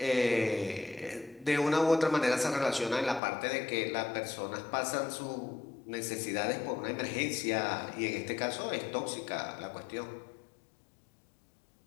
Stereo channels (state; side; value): drops out; right; at 3.2 s